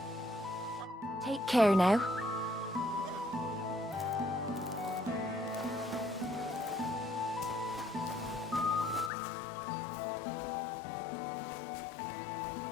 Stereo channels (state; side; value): drops out; right; at 9.1 s